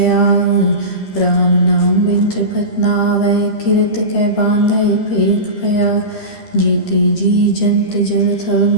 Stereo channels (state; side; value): late; right; 13 ms